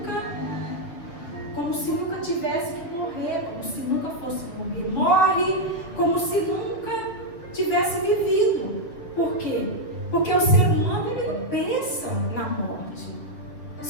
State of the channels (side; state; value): right; late; 7.4 ms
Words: nunca tivesse que morrer, como se nunca fosse morrer. Morre como se nunca tivesse vivido. Por quê? Porque o ser humano, ele não pensa na morte.